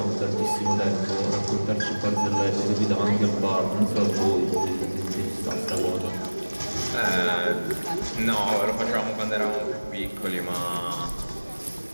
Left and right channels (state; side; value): inverted; both; correlation -1.00